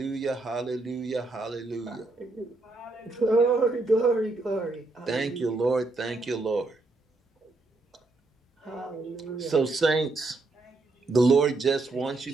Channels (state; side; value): quieter; left; 3.2 dB